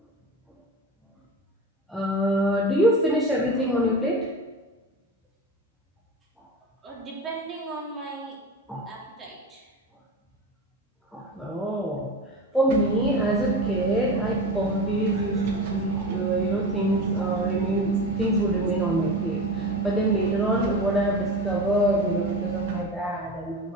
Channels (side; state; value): both; normal; correlation 0.27